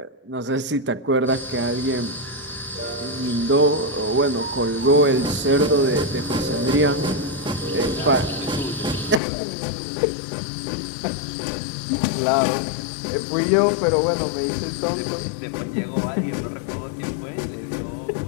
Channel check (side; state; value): right; drops out; at 9.2 s